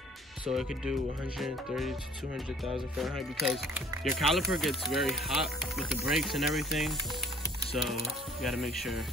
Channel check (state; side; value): normal; both; correlation 0.54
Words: so it could do 130 to 200,000 Fahrenheit, because your caliper gets very hot with the brakes and everything. So you gotta make sure.